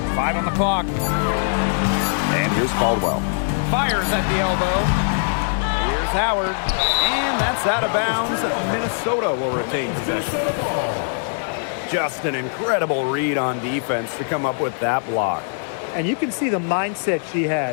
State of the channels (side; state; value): right; silent; digital silence